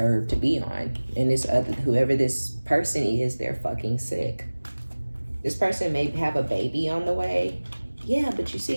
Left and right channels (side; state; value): both; inverted; correlation -1.00